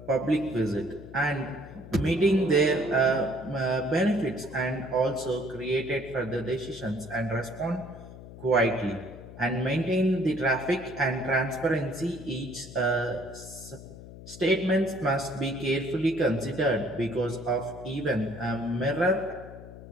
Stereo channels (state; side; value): noise; left; hum, 15 dB below the sound